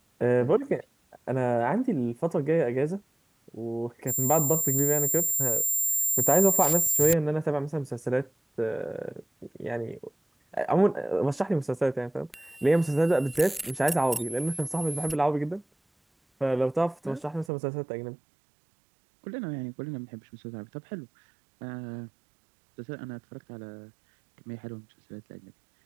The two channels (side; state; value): left; drops out; at 17.5 s